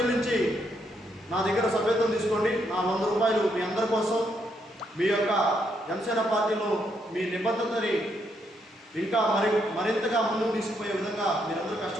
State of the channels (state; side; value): normal; both; correlation 0.76